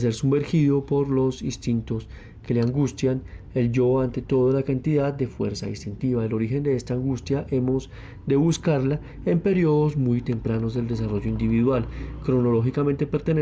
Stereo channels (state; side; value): identical; both; correlation 1.00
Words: sumergido por los instintos que le angustian, el yo ante todo la cantidad de fuerza instintiva. El origen de esta angustia hemos de buscarla en periodos muy tempranos del desarrollo individual. Cronológicamente